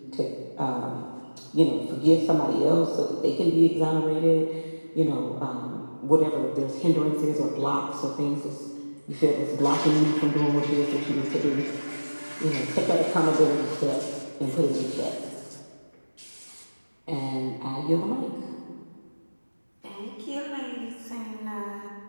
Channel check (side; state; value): both; inverted; correlation -1.00